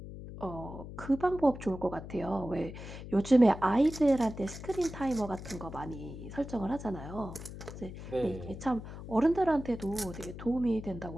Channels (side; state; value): left; noise; hum, 11 dB below the sound